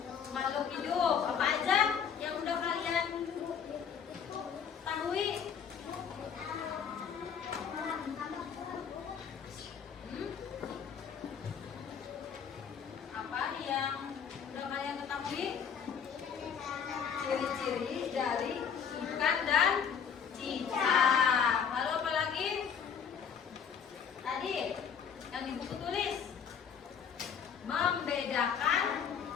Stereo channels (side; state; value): right; quieter; 7.3 dB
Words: Makhluk hidup. Apa aja yang udah kalian ketahui? Apa yang udah kalian ketahui? Ciri-ciri dari ikan dan cicak. Lalu apa lagi? Tadi yang di buku tulis membedakan